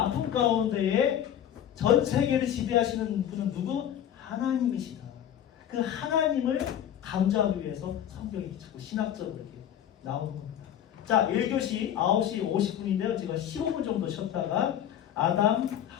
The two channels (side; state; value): right; quieter; 10.3 dB